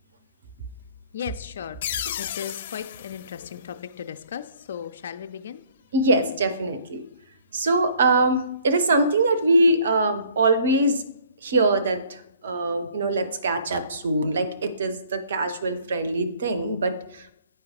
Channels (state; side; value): inverted; both; correlation -0.59